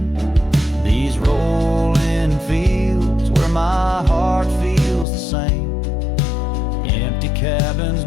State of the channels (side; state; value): right; drops out; at 5.1 s